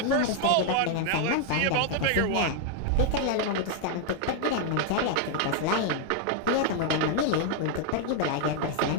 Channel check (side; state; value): both; different; correlation 0.00